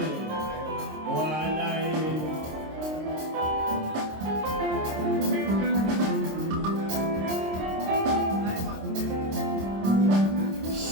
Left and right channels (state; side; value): late; left; 26 ms